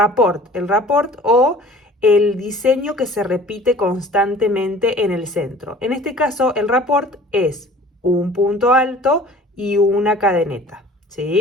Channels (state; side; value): normal; both; correlation 0.47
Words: o el diseño que se repite constantemente en el centro. En este caso, el rapport es un punto alto y una cadeneta,